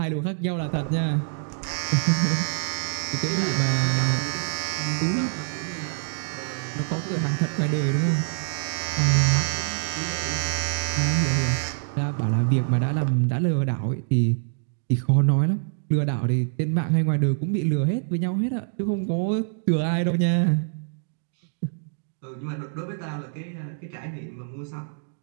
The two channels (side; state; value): left; silent; digital silence